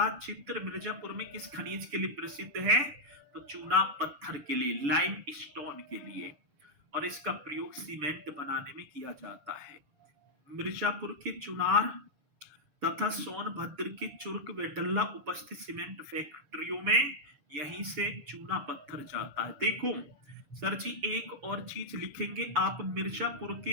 क्षेत्र मिर्जापुर में किस खनिज के लिए प्रसिद्ध है? तो चूना पत्थर के लिए, लाइम स्टोन के लिए, और इसका प्रयोग सीमेंट बनाने में किया जाता है। मिर्जापुर के चुनार तथा सोनभद्र के चुर्क व डल्ला उपस्थित सीमेंट फैक्ट्रियों में यहीं से चूना पत्थर जाता है। देखो सर जी, एक और चीज लिखेंगे आप,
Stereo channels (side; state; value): left; late; 6.9 ms